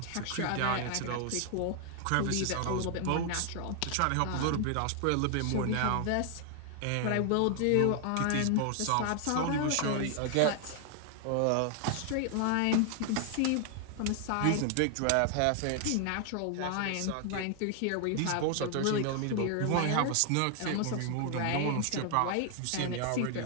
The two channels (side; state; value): both; different; correlation 0.00